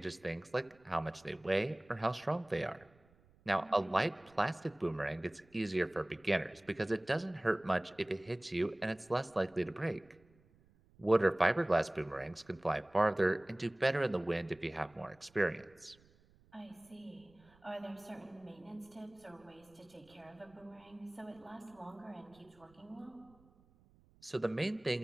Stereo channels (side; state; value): right; noise; rumble, 30 dB below the sound